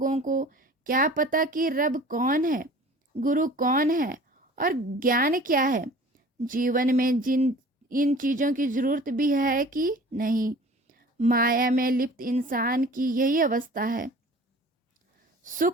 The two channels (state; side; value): normal; both; correlation 0.45